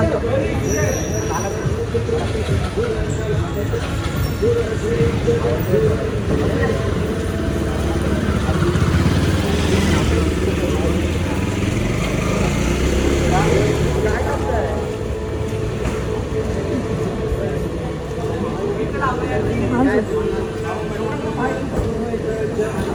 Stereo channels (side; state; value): both; identical; correlation 1.00